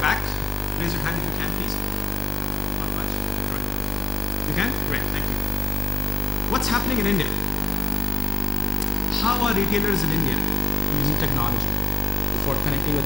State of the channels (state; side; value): quieter; right; 3.0 dB